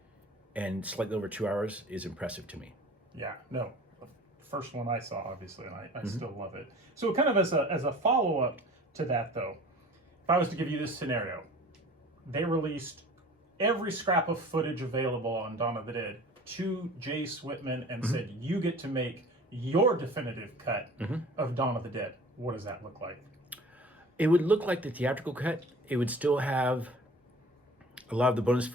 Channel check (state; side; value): normal; both; correlation 0.44